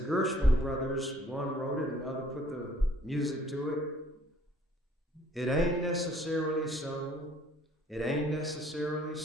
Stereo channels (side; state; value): both; normal; correlation 0.59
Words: Gershwin brothers, one wrote it and the other put the music to it, it ain't necessarily so. It ain't necessarily